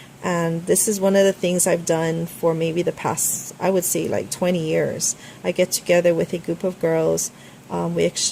And this is one of the things I've done for maybe the past, I would say, like 20 years. I get together with a group of girls. We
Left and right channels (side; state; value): both; identical; correlation 1.00